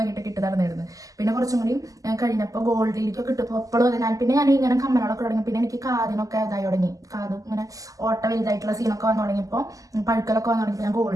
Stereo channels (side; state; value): left; late; 0.17 ms